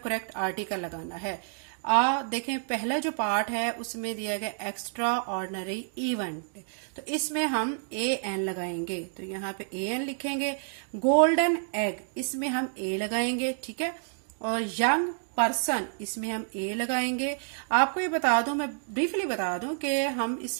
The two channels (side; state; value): left; silent; digital silence